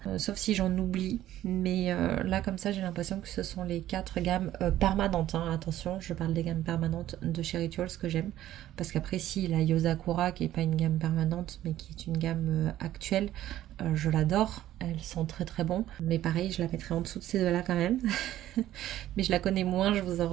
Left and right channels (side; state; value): left; quieter; 13.4 dB